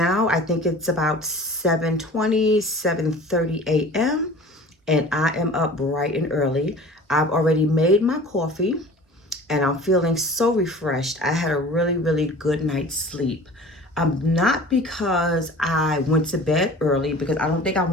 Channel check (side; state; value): both; normal; correlation 0.43